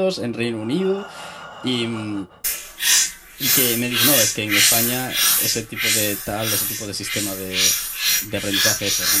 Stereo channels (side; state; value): both; identical; correlation 1.00